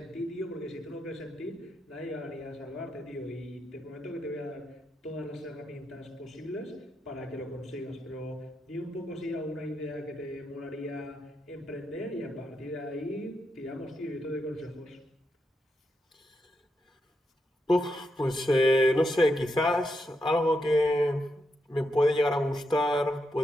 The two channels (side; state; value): both; normal; correlation 0.83